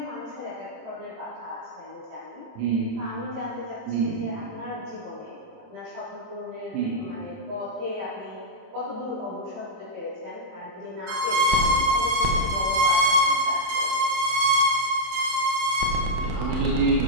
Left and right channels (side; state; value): left; late; 27 ms